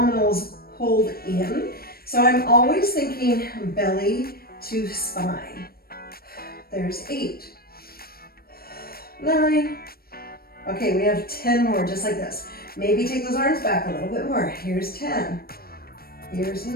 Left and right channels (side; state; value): right; late; 0.44 ms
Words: pulled in. So I'm always thinking belly to spine. There's 8, 9. Okay, we have 10 more just like this. Maybe take those arms back a little bit more. Here's 10. Here's